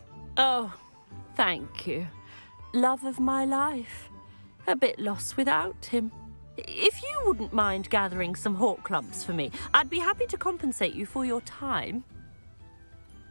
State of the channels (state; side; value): inverted; both; correlation -1.00